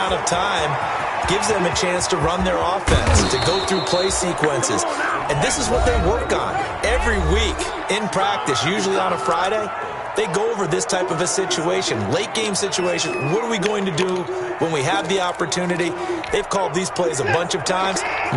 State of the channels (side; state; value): both; identical; correlation 1.00